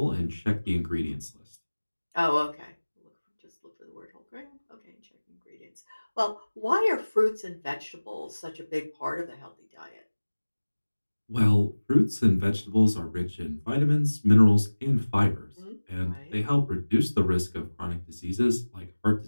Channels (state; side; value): inverted; both; correlation -1.00